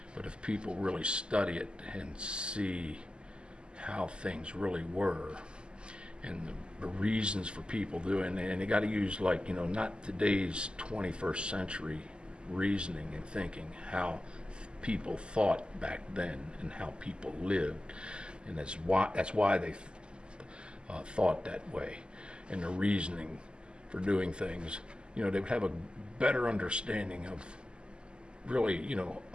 But if people really study it and see how things really were and the reasons for people doing it, and you got to use not today's 21st century reasoning and thinking, how people thought back then and how people lived, and that's why they thought that way, and the reasoning for doing things. They would have a better understanding of really,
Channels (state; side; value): late; left; 0.050 ms